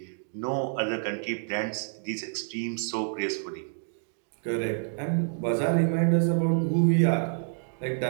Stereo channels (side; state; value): left; silent; digital silence